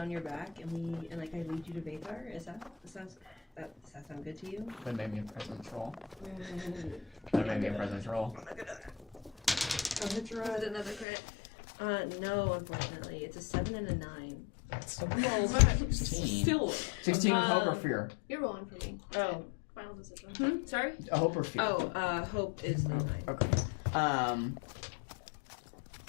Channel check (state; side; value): drops out; right; at 11.1 s